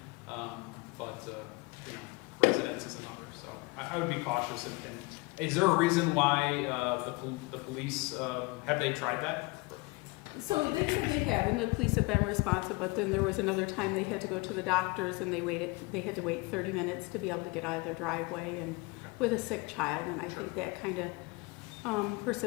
but, you know, residence is another. So I would be cautious. And is there a reason why the police, have they tried that? So they said they have, and the police have been responsive, but then there was another time they had to go to the doctors and they had to wait 30 minutes to be able to get out of their driveway and with a sick child, and I think that kind of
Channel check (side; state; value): right; quieter; 25.4 dB